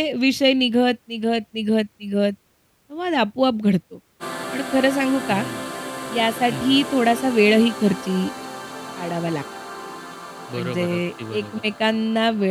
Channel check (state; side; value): identical; both; correlation 1.00